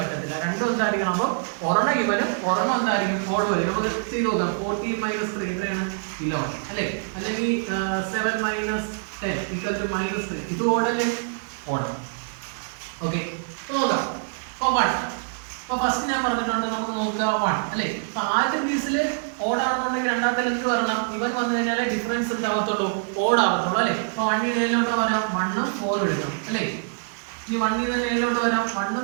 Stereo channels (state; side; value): silent; left; 62 dB below the other